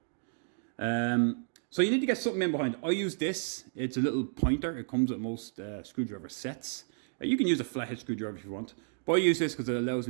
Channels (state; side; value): silent; left; digital silence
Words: So you need to get something in behind. I use this. It's a little pointer. It comes with most screwdriver sets. You can use a flathead screwdriver if you want, but I use this because it allows